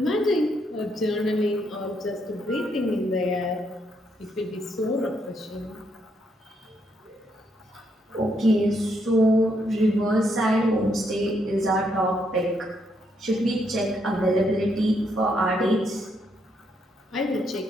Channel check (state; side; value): normal; both; correlation 0.76